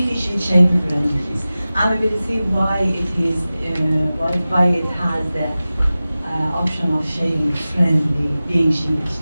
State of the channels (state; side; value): inverted; both; correlation -0.96